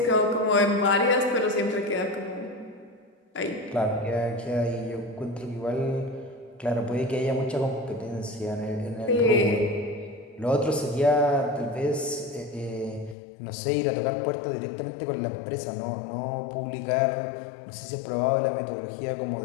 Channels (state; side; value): drops out; right; at 13.2 s